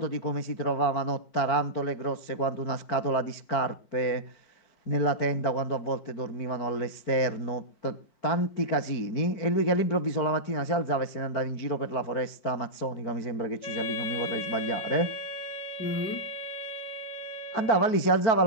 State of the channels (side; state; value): right; late; 4.5 ms